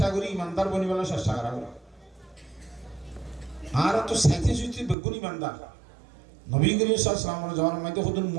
করি ইমানদার বনিবার চেষ্টা করা আর তো সাইতে সুইতে বেগুন ইমানদার নবী করিম সাল্লাল্লাহু আলাইহি ওয়াসাল্লামের মধ্যে খুদ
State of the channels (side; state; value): left; drops out; at 5.0 s